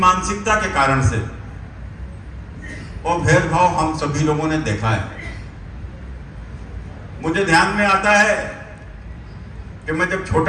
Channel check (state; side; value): identical; both; correlation 1.00